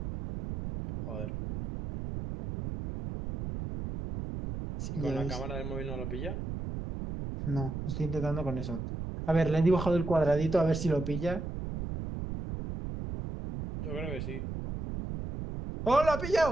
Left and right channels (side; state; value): right; noise; rumble, 6 dB below the sound